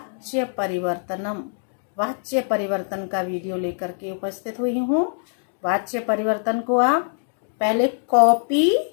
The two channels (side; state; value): right; silent; digital silence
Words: परिवर्तन का वीडियो लेकर के उपस्थित हुई हूँ। वाच्य परिवर्तन को आप पहले कॉपी